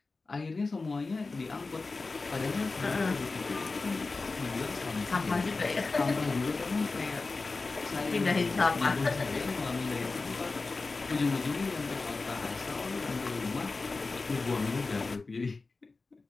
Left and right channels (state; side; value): quieter; right; 3.8 dB